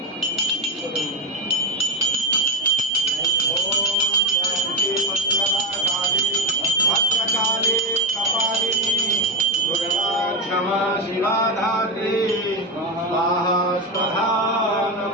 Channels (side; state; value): both; normal; correlation 0.09